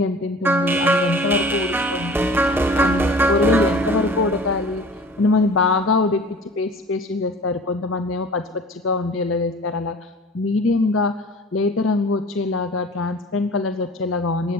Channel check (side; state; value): both; normal; correlation 0.43